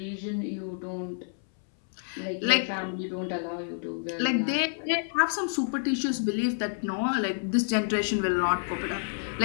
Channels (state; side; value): silent; right; 59 dB below the other